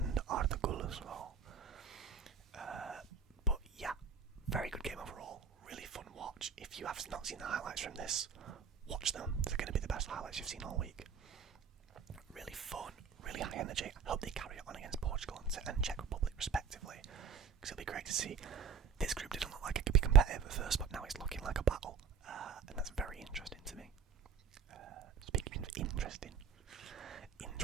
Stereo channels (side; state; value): left; quieter; 6.3 dB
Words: Arda Güler's goal. But yeah, very good game overall. Really fun watch. If you have not seen the highlights from this, watch them. They're going to be the best highlights you've seen all week. Really fun, really high energy. I hope they carry it on against Portugal and Czech Republic respectively, because it'll be great to see. This group didn't look like it could be competitive at first, but now it's looking like a battle, and that's very interesting to me. Speaking of interesting